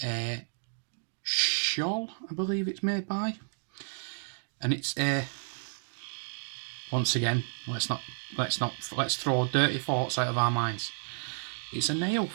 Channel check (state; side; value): silent; left; digital silence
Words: a shawl, I believe it's made by, and it's a, once again, let's throw dirty thoughts out of our minds. It's a nail